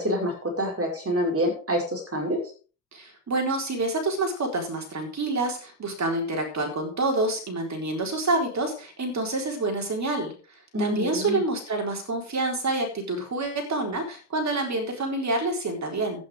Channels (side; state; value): both; normal; correlation -0.06